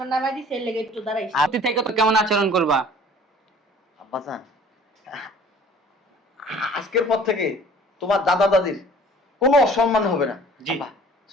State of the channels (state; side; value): normal; both; correlation 0.50